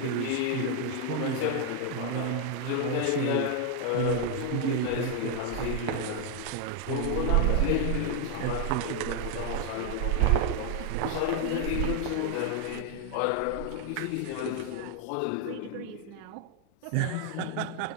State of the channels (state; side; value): different; both; correlation 0.00